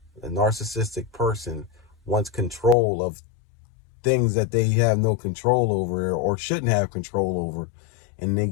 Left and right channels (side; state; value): right; drops out; at 2.8 s